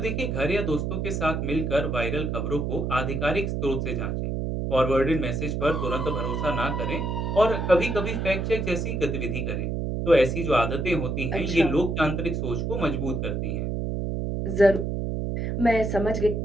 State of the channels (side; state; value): right; noise; hum, 1 dB below the sound